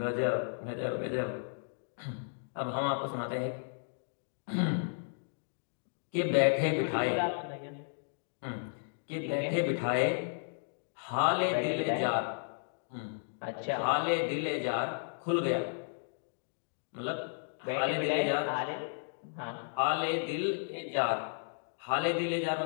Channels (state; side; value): silent; right; digital silence